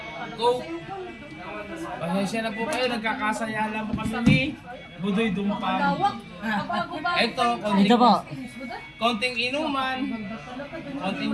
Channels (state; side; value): identical; both; correlation 1.00